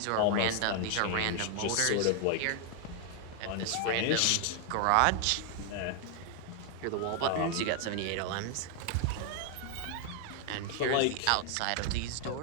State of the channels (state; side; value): different; both; correlation 0.00